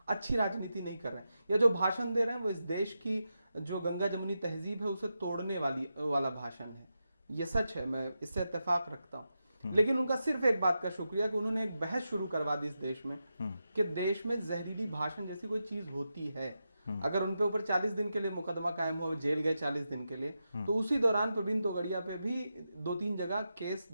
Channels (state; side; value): inverted; both; correlation -0.88